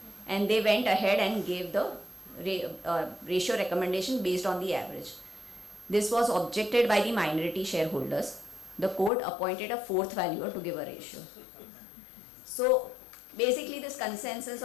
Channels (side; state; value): right; drops out; at 9.1 s